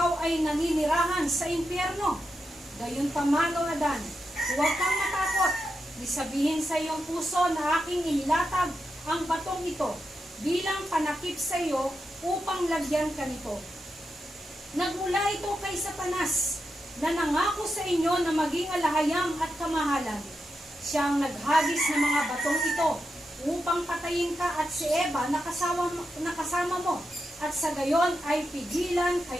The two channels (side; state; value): both; normal; correlation 0.87